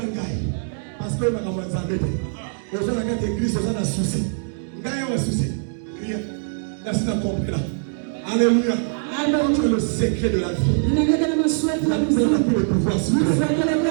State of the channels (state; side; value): silent; left; digital silence